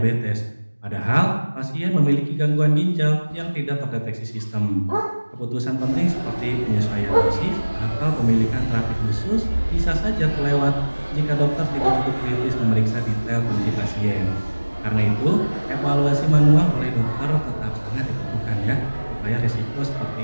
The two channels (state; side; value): inverted; both; correlation -1.00